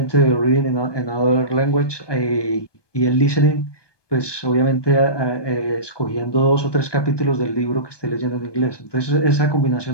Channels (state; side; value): late; right; 1.2 ms